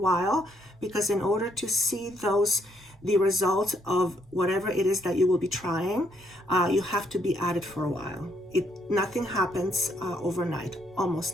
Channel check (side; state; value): both; normal; correlation 0.71